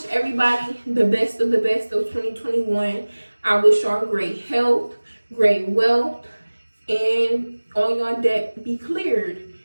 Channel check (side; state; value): both; inverted; correlation -1.00